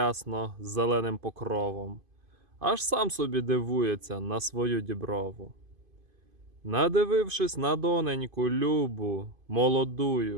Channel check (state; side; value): late; left; 2.5 ms